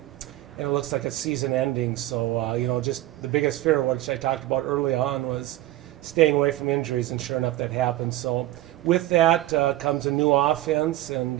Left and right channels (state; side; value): quieter; left; 15.8 dB